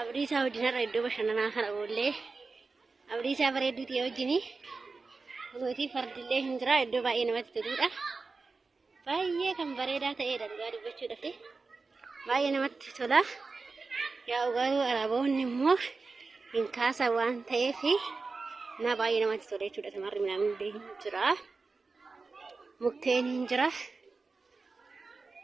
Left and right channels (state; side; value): quieter; left; 4.1 dB